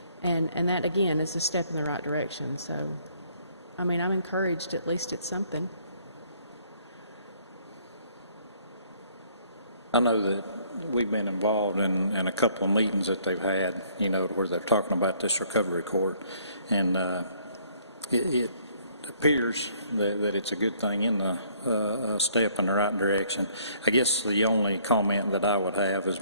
And that, again, is a step in the right direction. So, I mean, I'm encouraged, at least it's something. I know that we've been involved in a couple of meetings that they've had, where they're talking about this recovery court. And it appears that it's a good thing in the step in the right direction. I guess the only comment that I would have is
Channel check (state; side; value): inverted; both; correlation -0.63